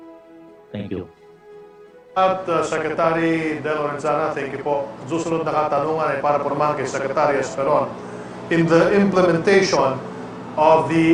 Thank you. At Secretary De Lorenzana, thank you po. Susunod na katanungan ay para naman kay Secretary Esperon. In the implementation of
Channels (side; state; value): both; identical; correlation 1.00